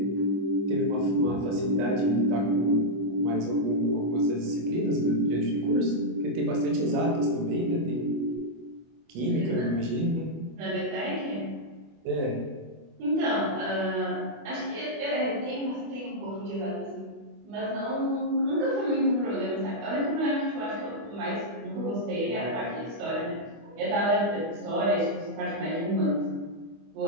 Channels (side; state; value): left; late; 25 ms